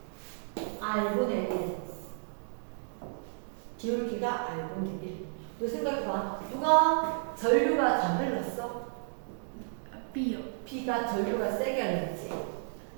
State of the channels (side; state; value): left; silent; digital silence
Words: R분의 1. 기울기가 R분의 1. 너 생각해봐. 누가 전류가 잘 흘렀어? B요. B가 전류가 세게 흘렀지.